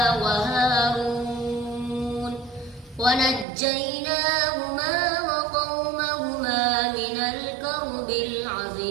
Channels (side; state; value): left; drops out; at 3.5 s